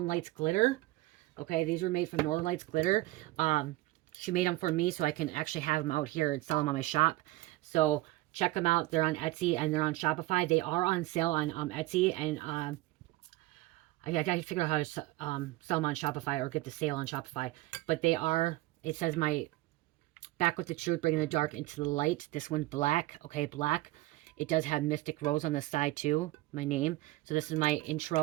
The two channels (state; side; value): quieter; left; 18.5 dB